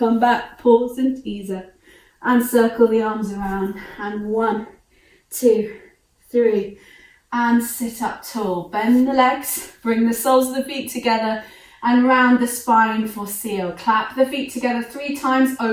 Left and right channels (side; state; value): both; identical; correlation 1.00